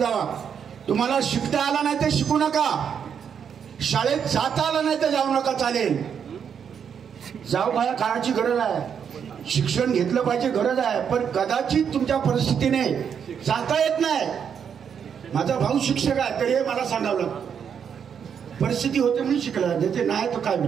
तुम्हाला शिकता आला नाही तर शिकू नका, शाळेत जाता आला नाही तर जाऊ नका, चालेल. जाऊ काय, काळाची गरज आहे, शिक्षण घेतलं पाहिजे, गरज आहे. पण कदाचित तुमच्या परिस्थितीने जाता येत नाही. माझा भाऊ शिक्षक आहे तरी मला सांगावं लागतं. परिस्थिती होते म्हणून शिकला, देते नाही तर काय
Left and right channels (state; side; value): quieter; left; 7.6 dB